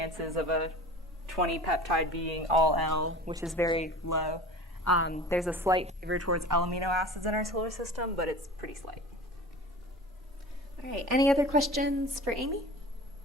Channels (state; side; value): normal; both; correlation 0.38